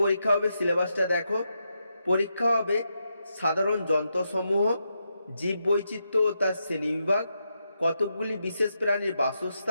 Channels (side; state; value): both; inverted; correlation -0.84